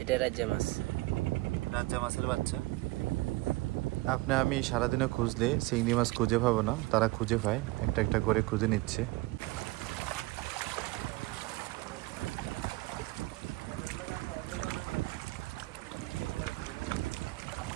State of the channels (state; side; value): quieter; left; 21.3 dB